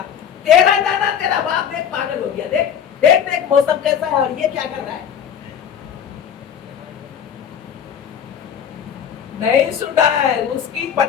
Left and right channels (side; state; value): right; quieter; 8.4 dB